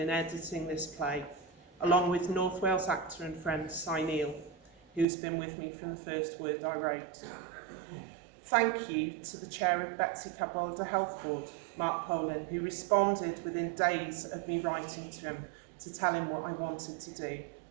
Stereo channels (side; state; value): left; drops out; at 5.1 s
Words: editing this play, along with North Wales actor and friend Cy Neal, who's been with me from the first word I wrote. Thank you to the chair of Betsy Cadwallader Health Board, Mark Poland, who responded within days of me writing to him to tell him what I wanted to do.